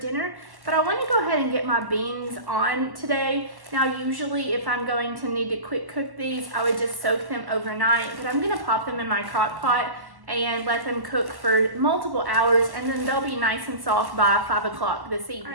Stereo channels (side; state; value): left; late; 1.1 ms